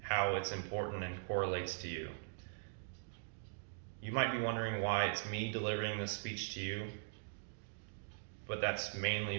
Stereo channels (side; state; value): left; silent; digital silence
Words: how it's important and correlates to you. You might be wondering why it's me delivering this speech to you, but that's mainly